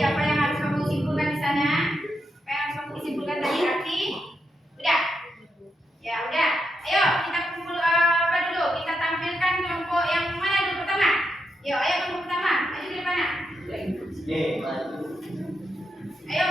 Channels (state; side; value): normal; both; correlation 0.84